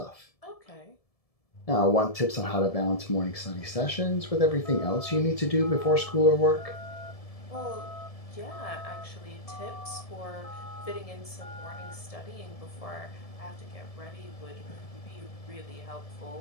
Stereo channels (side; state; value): right; late; 1.7 ms